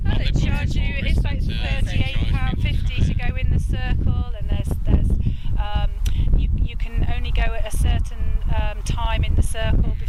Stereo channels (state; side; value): identical; both; correlation 1.00